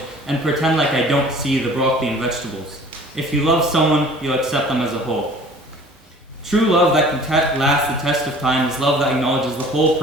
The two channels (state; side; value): normal; both; correlation 0.48